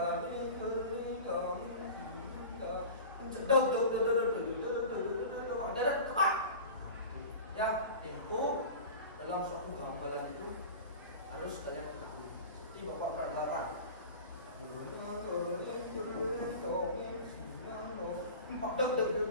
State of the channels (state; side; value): inverted; both; correlation -0.35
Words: Ya, tempo dalam suatu gamelan itu harus kalian ketahui. Seperti Bapak peragakan.